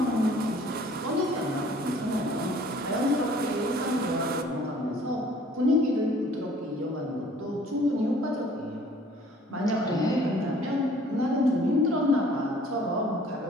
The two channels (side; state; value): both; normal; correlation 0.54